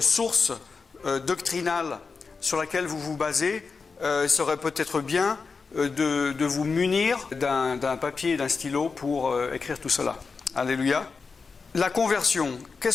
source doctrinale sur laquelle vous vous basez, il serait peut-être bien de vous munir d'un papier et d'un stylo pour écrire tout cela. Alléluia. La conversion.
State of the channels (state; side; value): quieter; right; 4.8 dB